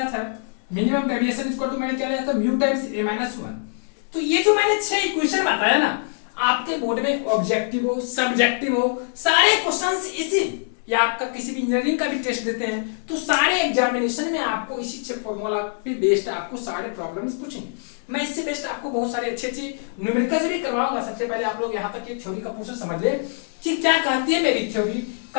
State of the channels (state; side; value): silent; right; digital silence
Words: था, मिनिमम डेविएशन इक्वल टू मैंने क्या लिया था, म्यू टाइम्स a-1। तो ये जो मैंने 6 इक्वेशन बताया ना, आपके बोर्ड में ऑब्जेक्टिव हो, सब्जेक्टिव हो, सारे क्वेश्चंस इसी, या आपका किसी भी इंजीनियरिंग का भी टेस्ट देते हैं तो सारे एग्जामिनेशन में आपको इसी 6 फॉर्मूला पे बेस्ड आपको सारे प्रॉब्लम्स पूछेंगे। मैं इससे बेस्ट आपको बहुत सारी अच्छी न्यूमेरिकल्स भी करवाऊंगा। सबसे पहले आप लोग यहाँ तक की थ्योरी का पोर्शन समझ ले कि क्या कहती है मेरी थ्योरी,